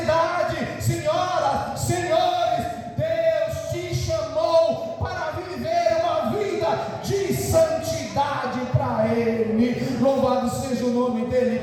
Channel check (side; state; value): both; identical; correlation 1.00